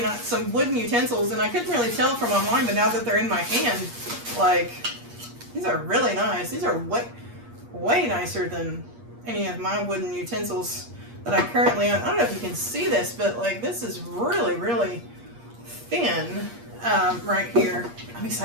wooden utensils, and I couldn't really tell from online, but now that they're in my hand, like, these are really nice. These are way nicer than any of my wooden utensils that I currently own. I don't know if you can see this, but like this is really, really thin right here. I'm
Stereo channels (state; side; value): late; left; 8.5 ms